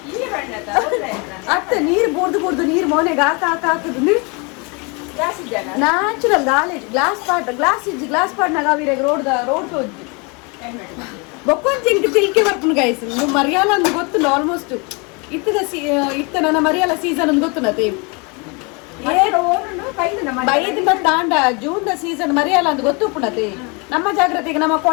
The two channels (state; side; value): quieter; right; 30.8 dB